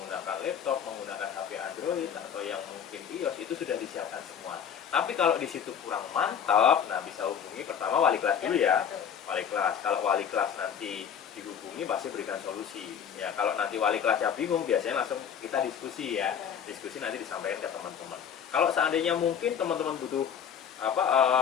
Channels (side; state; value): right; quieter; 8.1 dB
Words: laptop, menggunakan HP Android atau yang mungkin iOS, itu sudah disiapkan semua. Tapi kalau di situ kurang mantap, nah bisa hubungi pertama wali kelas dulu ya. Betul. Wali kelas. Kalau wali kelas nanti dihubungi pasti berikan solusi. Ya, kalau nanti wali kelasnya bingung, biasanya langsung kita diskusi ya. Diskusi nanti disampaikan ke teman-teman. Kalau seandainya mungkin teman-teman butuh